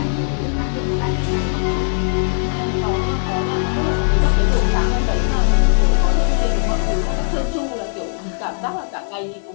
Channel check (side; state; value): right; silent; 57 dB below the other